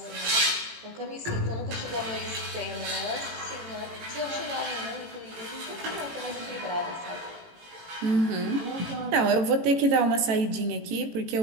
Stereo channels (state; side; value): late; left; 18 ms